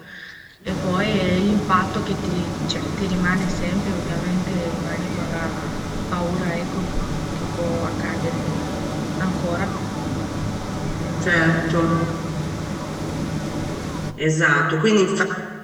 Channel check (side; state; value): both; identical; correlation 1.00